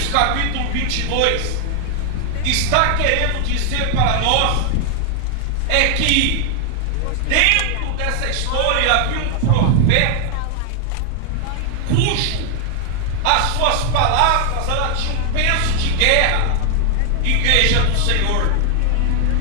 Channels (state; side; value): different; both; correlation 0.00